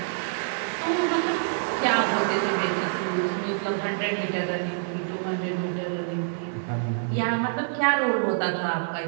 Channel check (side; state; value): left; silent; 61 dB below the other